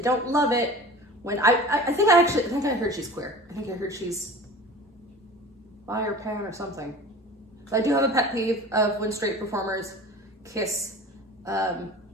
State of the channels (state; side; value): normal; both; correlation 0.39